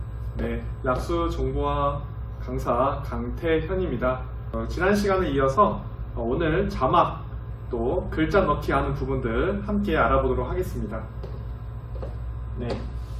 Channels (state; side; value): identical; both; correlation 1.00